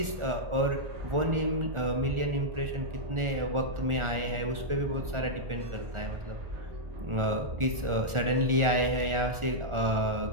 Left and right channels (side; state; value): left; late; 1.4 ms